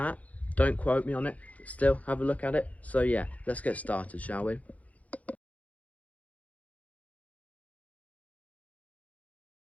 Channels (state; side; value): late; right; 0.069 ms